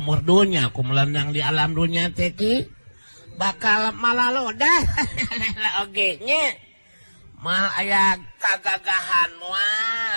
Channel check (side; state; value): both; inverted; correlation -1.00